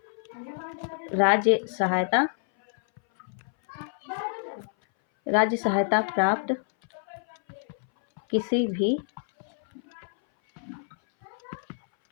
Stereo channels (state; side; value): silent; right; 58 dB below the other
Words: राज्य सहायता प्राप्त किसी भी